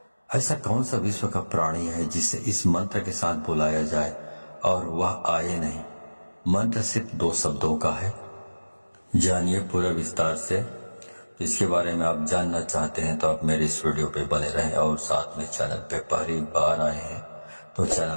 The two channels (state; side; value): inverted; both; correlation -1.00